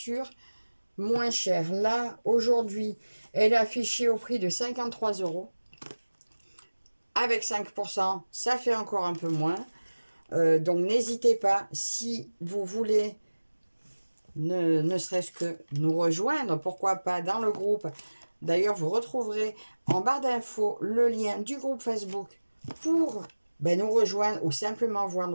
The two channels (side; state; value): both; inverted; correlation -1.00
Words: moins cher. Là, aujourd'hui, elle est affichée au prix de 53 €. Avec 5%, ça fait encore un peu moins. Donc, n'hésitez pas, si vous voulez ne serait-ce que nous rejoindre, pourquoi pas dans le groupe. D'ailleurs, vous retrouverez en barre d'infos le lien du groupe Facebook pour nous rejoindre ou simplement voir